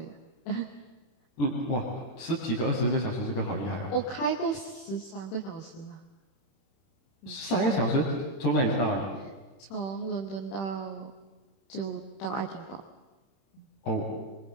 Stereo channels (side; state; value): right; late; 31 ms